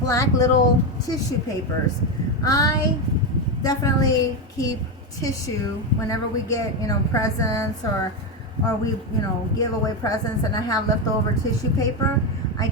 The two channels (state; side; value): normal; both; correlation 0.10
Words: black little tissue papers. I definitely keep tissue whenever we get, presents, or we, give away presents, and I have leftover tissue paper. I